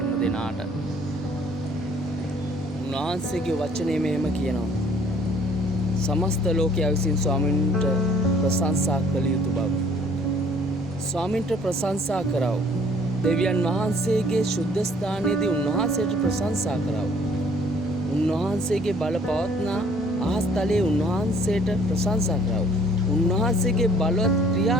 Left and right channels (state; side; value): noise; right; rumble, 25 dB below the sound